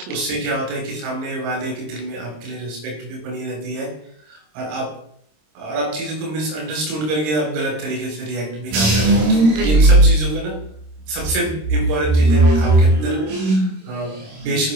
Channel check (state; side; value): late; left; 26 ms